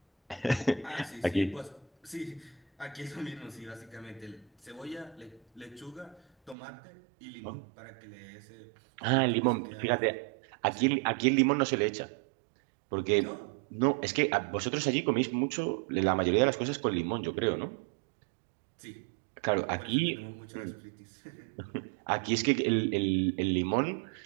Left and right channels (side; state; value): left; drops out; at 6.6 s